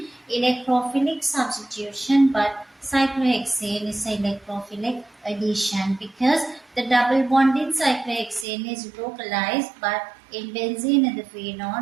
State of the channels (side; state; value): left; drops out; at 8.5 s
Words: electrophilic substitution, but cyclohexane is electrophilic addition because the double bond in cyclohexane is localized, but in benzene and the phenol,